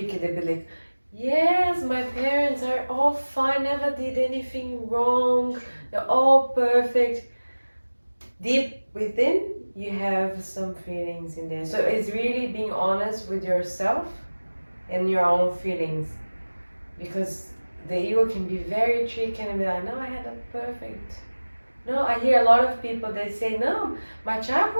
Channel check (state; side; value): inverted; both; correlation -1.00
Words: They be like, yes, my parents are all fine, never did anything wrong, they're all perfect. Deep within, you have some feelings in there. So it's really being honest with yourself and your own feelings, because the ego can be very tricky and be like, no, I had a perfect. No, I hear a lot of people, they say, no, my